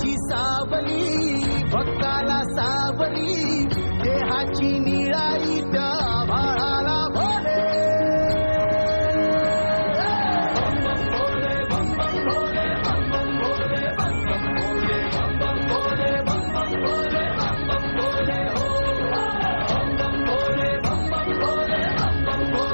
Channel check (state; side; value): inverted; both; correlation -1.00